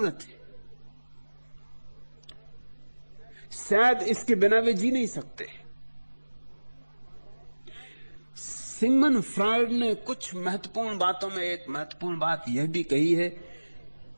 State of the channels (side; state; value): both; inverted; correlation -1.00